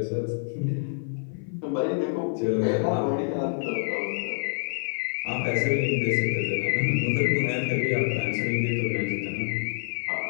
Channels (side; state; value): right; silent; 58 dB below the other